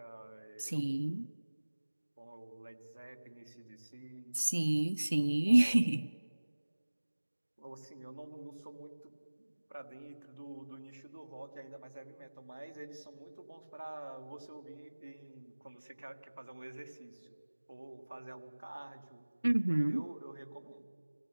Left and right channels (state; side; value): inverted; both; correlation -1.00